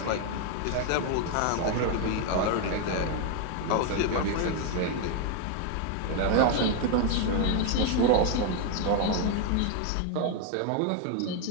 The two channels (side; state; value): both; different; correlation 0.01